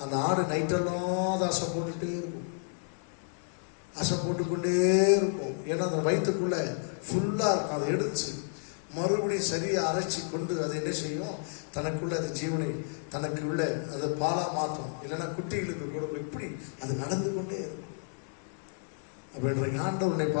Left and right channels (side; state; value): right; silent; 57 dB below the other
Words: அந்த ஆடு நைட்டெல்லாம் அசை போட்டுட்டே இருக்கும். அசை போட்டுக்கொண்டே இருக்கும். ஏன்னா அந்த வயிற்றுக்குள்ள ஃபுல்லா இருக்கும். அதை எடுத்து மறுபடியும் சரியா அரைச்சி கொண்டு அதை என்ன செய்யும்? தனக்குள்ள அது ஜீவனை தனக்கு உள்ள அதை பாலா மாற்றும். இல்லைன்னா குட்டிகளுக்கு கூட எப்படி அது நடந்து கொண்டே இருக்கும். அப்படின்ற ஆண்டவர் உன்னை